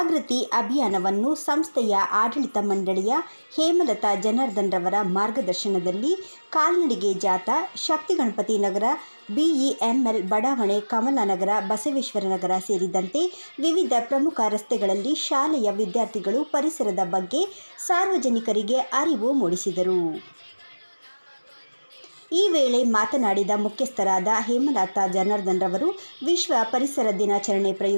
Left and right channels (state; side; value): inverted; both; correlation -1.00